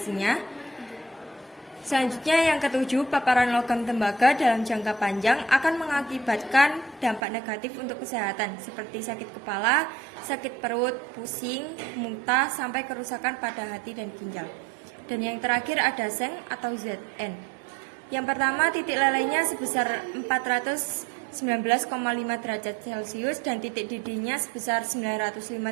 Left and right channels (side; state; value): left; drops out; at 7.2 s